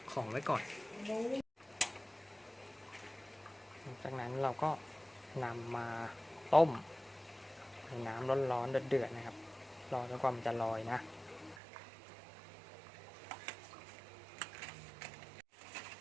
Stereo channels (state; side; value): drops out; left; at 11.6 s